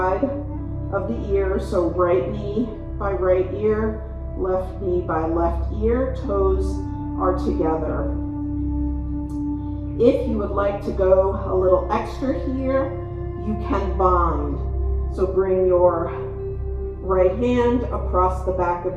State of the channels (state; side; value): identical; both; correlation 1.00